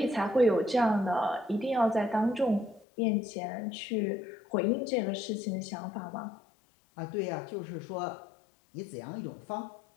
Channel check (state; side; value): drops out; right; at 2.9 s